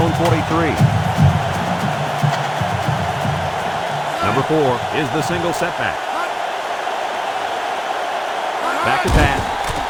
43. Number 4 is the single setback. Back to pass.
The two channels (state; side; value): identical; both; correlation 1.00